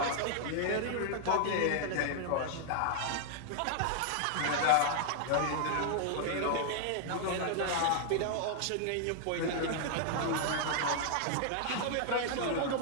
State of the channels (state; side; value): different; both; correlation 0.00